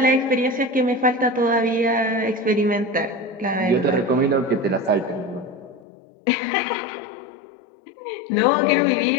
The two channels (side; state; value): right; drops out; at 5.8 s